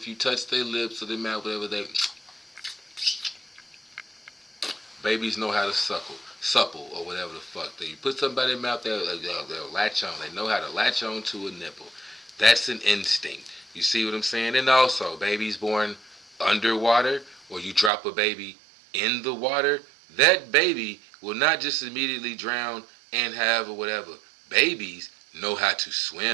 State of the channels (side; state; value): left; drops out; at 17.9 s